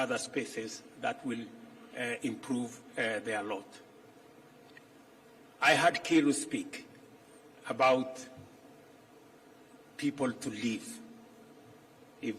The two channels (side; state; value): both; identical; correlation 1.00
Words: spaces that will improve their lot. I heard Kiru speak about people to leave if